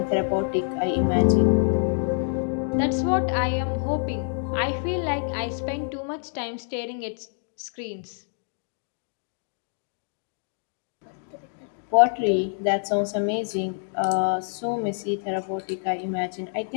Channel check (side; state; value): right; silent; 57 dB below the other